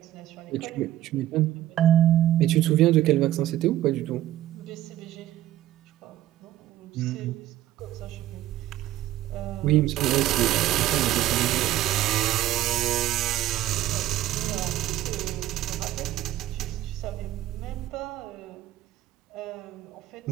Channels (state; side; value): quieter; left; 13.8 dB